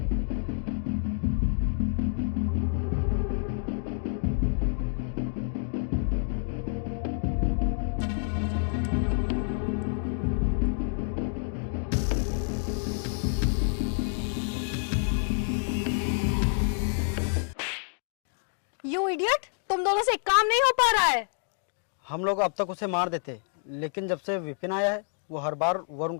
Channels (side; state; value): right; silent; 59 dB below the other